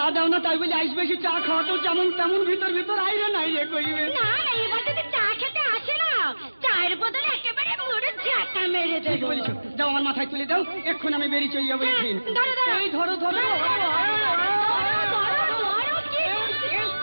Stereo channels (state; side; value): inverted; both; correlation -1.00